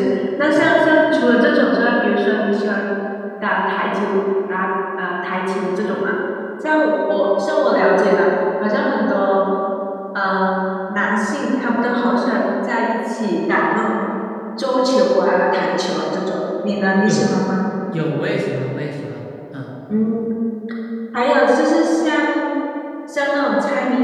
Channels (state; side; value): identical; both; correlation 1.00